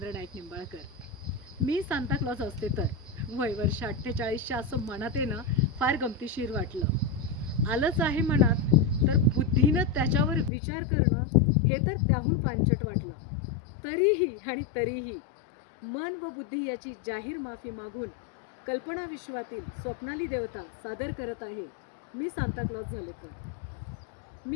नाईक निंबाळकर. मी सांताक्लॉज असते तर वय वर्ष 48च्या असं मनात येणं फार गमतीशीर वाटलं. आलंच आहे मनात तर बुद्धीनं त्याच्यावर विचार करणं हे तर त्याहून पांचट वाटलं. तरीही मन व बुद्धी याची जाहीर माफी मागून कल्पना विश्वातील स्वप्नाली देवता सादर करत आहे मी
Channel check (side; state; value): right; drops out; at 10.5 s